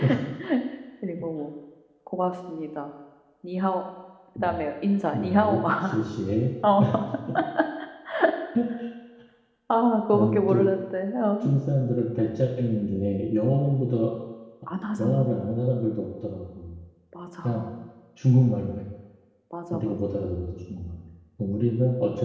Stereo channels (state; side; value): identical; both; correlation 1.00